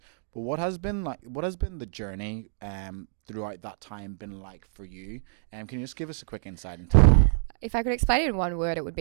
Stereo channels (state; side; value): silent; left; digital silence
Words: But what has been the journey throughout that time been like for you? Can you just give us a quick insight into that? If I could explain it in one word, it would